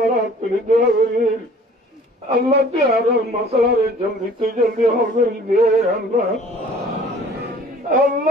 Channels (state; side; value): normal; both; correlation 0.51